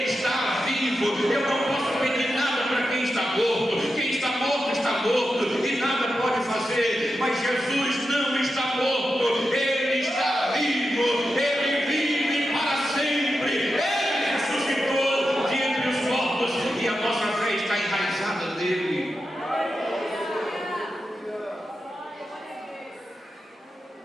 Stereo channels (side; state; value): both; normal; correlation 0.89